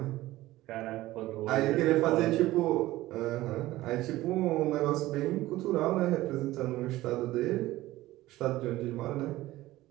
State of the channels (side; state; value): left; quieter; 16.9 dB